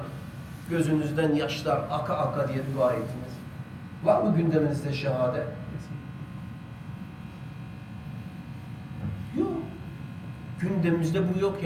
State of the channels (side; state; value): both; identical; correlation 1.00